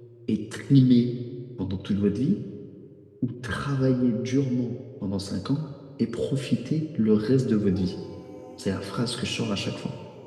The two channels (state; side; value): identical; both; correlation 1.00